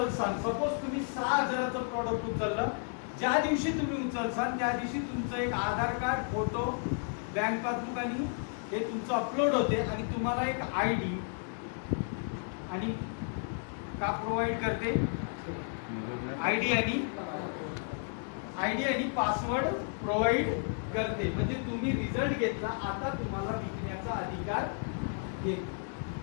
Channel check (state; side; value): silent; right; 56 dB below the other